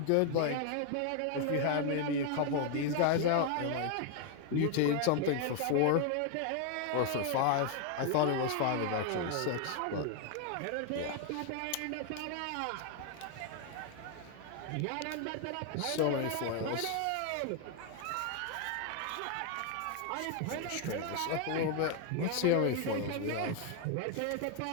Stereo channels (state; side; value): different; both; correlation 0.00